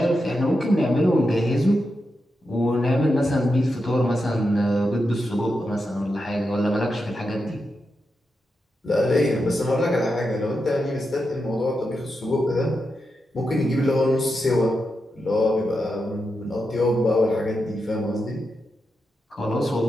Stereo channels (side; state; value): both; normal; correlation 0.87